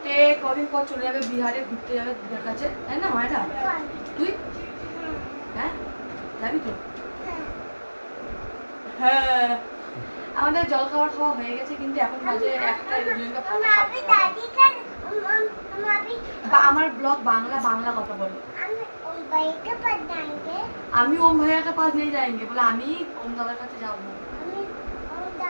কদিন পর চলে যাবে বিহারে, ঘুরতে যাবে দিদার কাছে, তাই না মায়েরা? তুই হ্যাঁ যাবি তো? হ্যাঁ আমাদের জল খাবার খাওয়া হয়ে গেছে, কিন্তু এখন বাজে একটা। আমার ব্লগ বাংলা বাংলা কথা বলো। আমি ওম ভাইয়া के पास नहीं जाएंगे बोला, আমি ওম দাদার কাছে যাবো।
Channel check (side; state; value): both; inverted; correlation -1.00